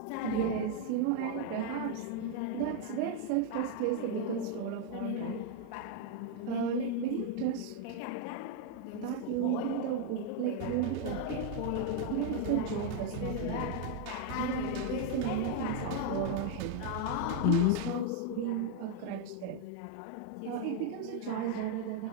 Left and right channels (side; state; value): both; different; correlation 0.00